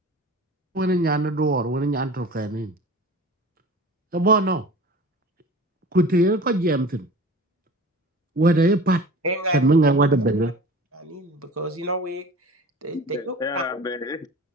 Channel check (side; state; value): both; normal; correlation 0.39